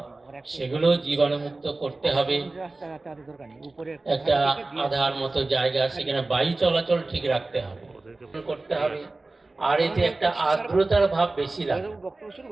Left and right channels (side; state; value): left; quieter; 3.2 dB